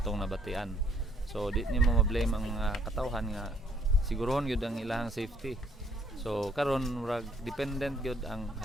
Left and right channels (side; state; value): both; normal; correlation 0.66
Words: nabatian. So di nimo ma-blame ang mga katawhan nga sigurohon gyud ang ilahang safety. So karon murag dependent gyud ang